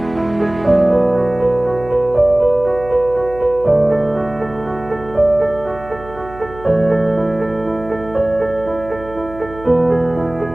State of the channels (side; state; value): right; noise; hum, 17 dB below the sound